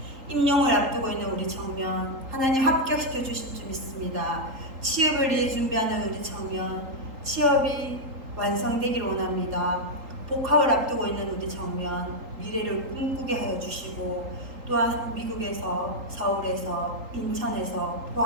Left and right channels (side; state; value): left; late; 3.8 ms